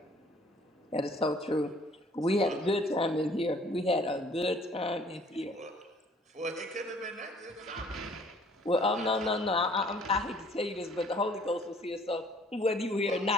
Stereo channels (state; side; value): normal; both; correlation 0.57